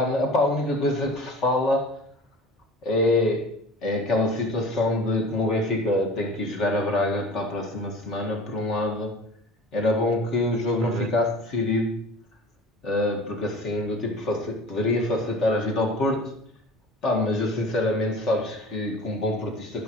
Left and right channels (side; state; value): both; normal; correlation 0.41